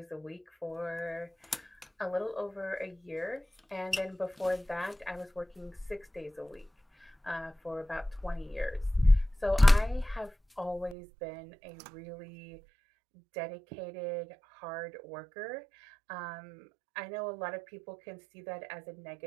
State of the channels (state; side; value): drops out; left; at 11.0 s